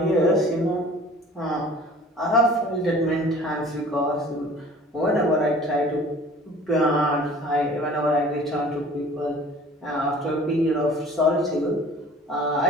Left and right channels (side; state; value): both; normal; correlation 0.47